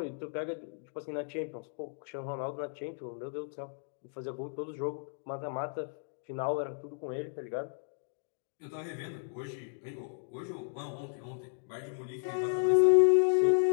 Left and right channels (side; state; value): right; silent; digital silence